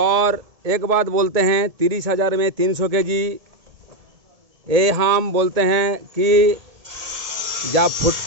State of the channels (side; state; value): left; late; 1.7 ms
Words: एक बात बोलते हैं 30,000 में 300 kg, ये हम बोलते हैं कि जब